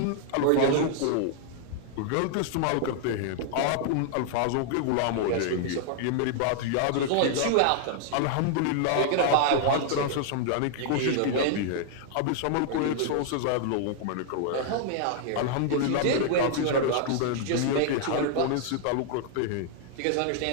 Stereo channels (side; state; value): both; different; correlation -0.01